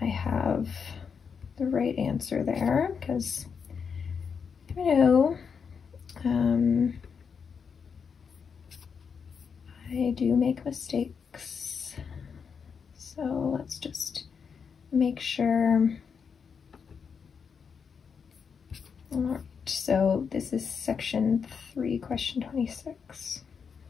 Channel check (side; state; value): right; quieter; 6.3 dB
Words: I have the right answer there, because you know, I do make mistakes. So let's just make sure. All right, so this is section 3, question 26.